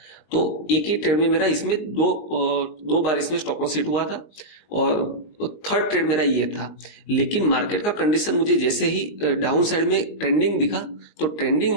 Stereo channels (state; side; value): late; right; 19 ms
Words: तो एक ही ट्रेड में मेरा इसमें दो बार इसमें स्टॉप लॉस हिट हुआ था और थर्ड ट्रेड मेरा ये था। लेकिन मार्केट का कंडीशन मुझे जैसे ही डाउन साइड में ट्रेंडिंग दिखा, तो